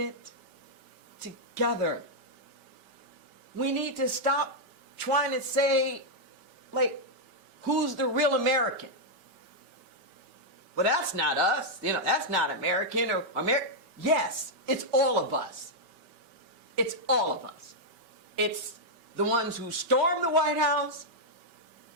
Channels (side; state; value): left; late; 5.2 ms